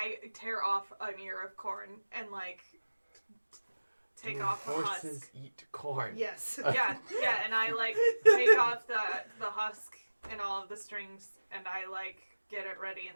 tear off an ear of corn and like take Do off the horses husk. eat corn? Yes. Yeah, and I like take off the husk and all of the strings, and I like get it ready,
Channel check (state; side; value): inverted; both; correlation -1.00